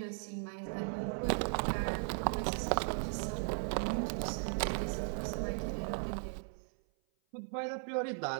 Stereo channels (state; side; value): silent; left; 53 dB below the other